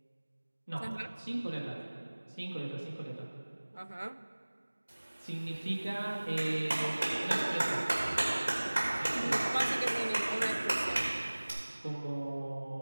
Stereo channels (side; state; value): both; inverted; correlation -1.00